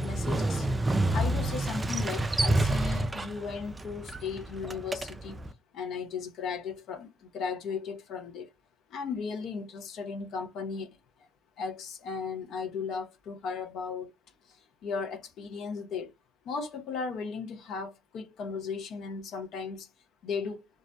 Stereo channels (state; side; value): normal; both; correlation 0.74